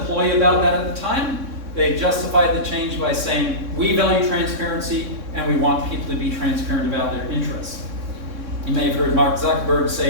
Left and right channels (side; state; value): left; late; 3.6 ms